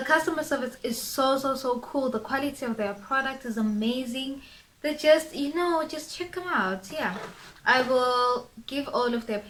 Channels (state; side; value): identical; both; correlation 1.00